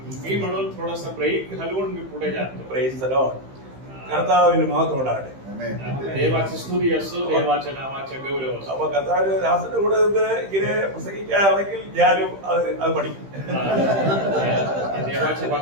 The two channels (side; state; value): left; late; 15 ms